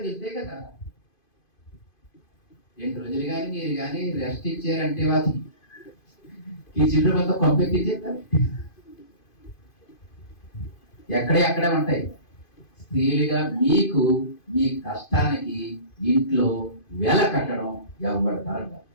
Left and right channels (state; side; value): late; right; 2.5 ms